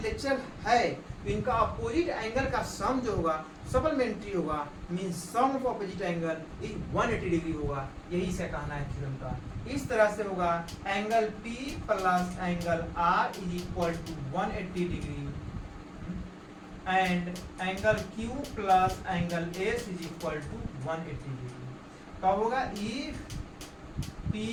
है तो इनका अपोजिट एंगल का सम जो होगा सप्लीमेंट्री होगा, means sum of opposite angle is 180 degree होगा। यही से कहना है थ्योरम का। इस तरह से होगा angle P plus angle R is equal to 180 degree and angle Q plus angle S is equal to 180 degree. कब होगा, if P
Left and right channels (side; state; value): both; identical; correlation 1.00